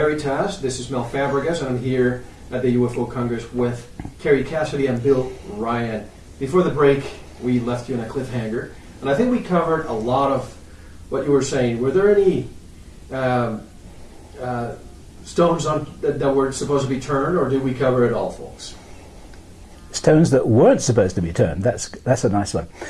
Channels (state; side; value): identical; both; correlation 1.00